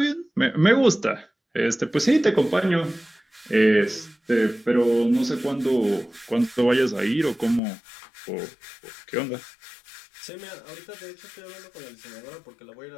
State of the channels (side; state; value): right; drops out; at 7.6 s